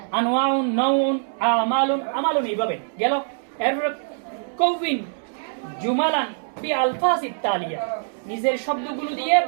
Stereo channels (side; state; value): left; silent; digital silence